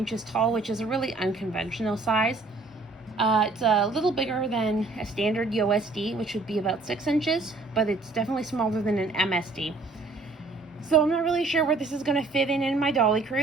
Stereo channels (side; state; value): left; quieter; 3.5 dB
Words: tall, which is a really unconventional size. It's a little bigger than a standard USD, which would be about 6 inches, but it's definitely smaller than an MSD. So I'm not really sure where this is going to fit in my dolly